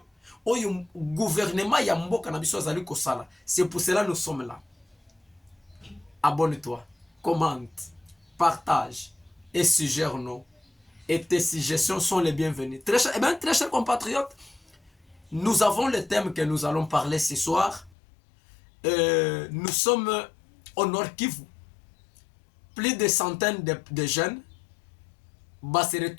au gouvernement ya mboka na biso azali kosala. C'est pour cela nous sommes là. Abonne-toi, commente, partage et suggère-nous. Et tes suggestions sont les bienvenues. Très chers compatriotes, nous avons le thème que nous allons parler ce soir. Nous sommes au Nord Kivu. Plus de centaines de jeunes se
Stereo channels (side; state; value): right; drops out; at 17.9 s